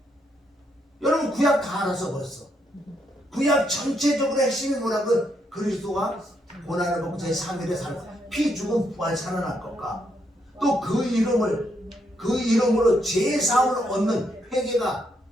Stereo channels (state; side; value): normal; both; correlation 0.76